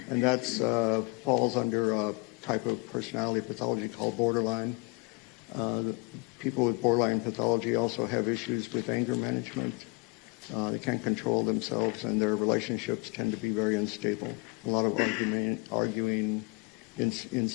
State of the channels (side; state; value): right; quieter; 29.5 dB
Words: that falls under a type of personality pathology called borderline. People with borderline pathology also have issues with anger management. They can't control themselves, and their relationships tend to be very unstable. A lot of arguing,